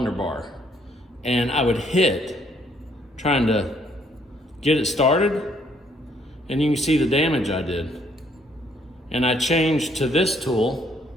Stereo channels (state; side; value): normal; both; correlation 0.67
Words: Bar. And I would hit, trying to get it started. And you can see the damage I did. And I changed to this tool,